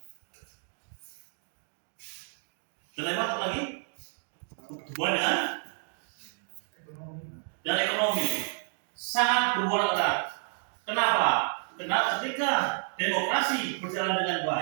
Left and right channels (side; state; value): left; silent; 58 dB below the other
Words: Dan apa lagi? Hubungan dengan ekonomi sangat berhubungan erat. Kenapa? Karena ketika demokrasi berjalan dengan